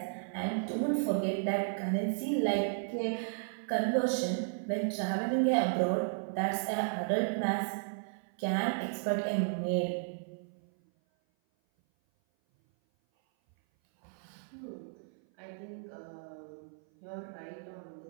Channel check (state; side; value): silent; left; 55 dB below the other